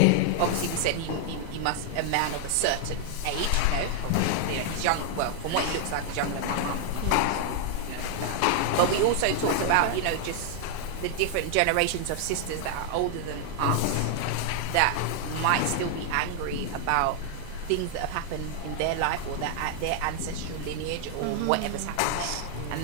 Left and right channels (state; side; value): different; both; correlation 0.00